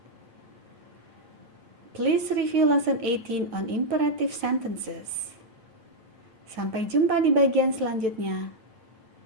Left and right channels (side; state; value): left; late; 9.1 ms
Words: Please review lesson 18 on imperative sentences. Sampai jumpa di bagian selanjutnya.